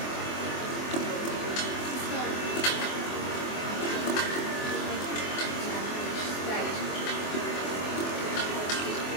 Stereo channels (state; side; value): late; right; 24 ms